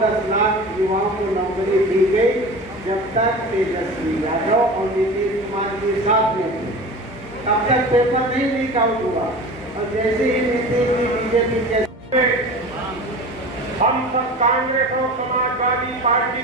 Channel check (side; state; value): both; normal; correlation 0.35